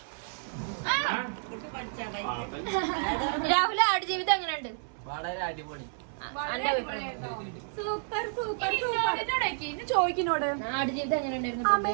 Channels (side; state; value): left; silent; 58 dB below the other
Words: രാഹുൽ ആടുജീവിതം എങ്ങനെയുണ്ട്? വളരെ അടിപൊളി. Super super super. ചോദിക്കുന്നോട് ആടുജീവിതം എങ്ങനെയുണ്ടായിരുന്നു?